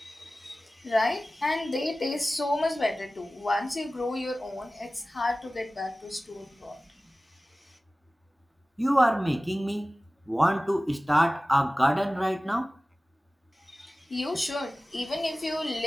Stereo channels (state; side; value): normal; both; correlation 0.97